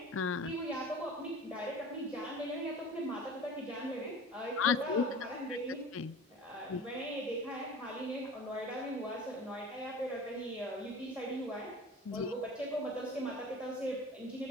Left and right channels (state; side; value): normal; both; correlation 0.39